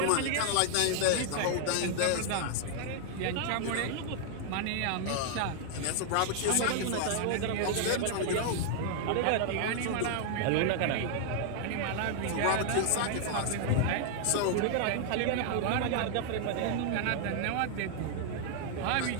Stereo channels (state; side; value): different; both; correlation 0.00